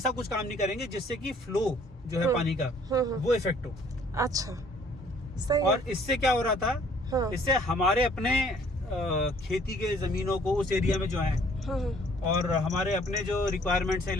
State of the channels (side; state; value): both; normal; correlation 0.58